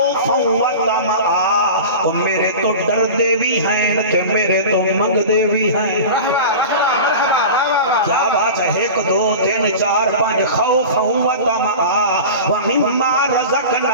و طمعا میرے تو ڈر دے بھی ہیں تے میرے تو منگ دے بھی ہیں کیا بات ہے 1 2 3 4 5 خوف و طمعا ومما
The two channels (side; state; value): both; inverted; correlation -0.33